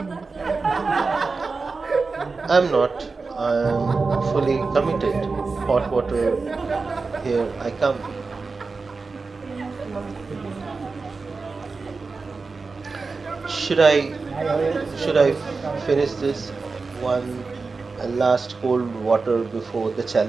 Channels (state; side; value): quieter; left; 4.2 dB